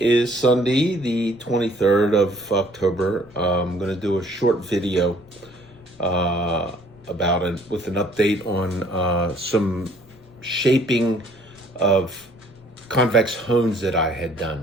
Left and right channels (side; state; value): left; noise; rumble, 27 dB below the sound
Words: Sunday, the 23rd of October. I'm going to do a short video about it with an update on some shaping of convex hones that I had